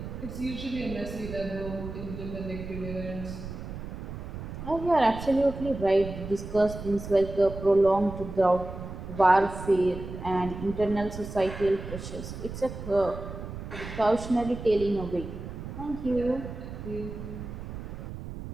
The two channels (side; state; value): right; noise; rumble, 9 dB below the sound